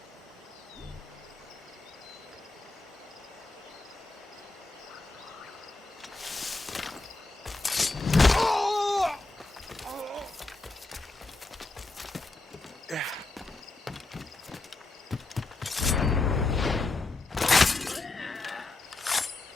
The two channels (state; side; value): quieter; right; 3.2 dB